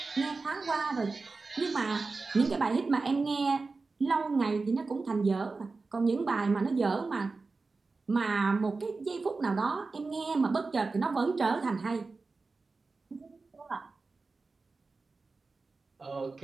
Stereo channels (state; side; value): quieter; left; 3.9 dB